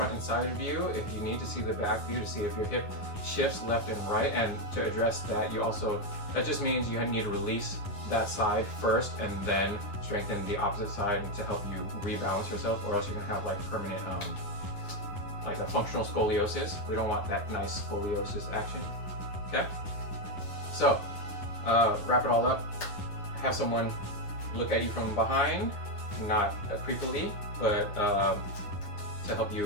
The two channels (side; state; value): right; late; 9.8 ms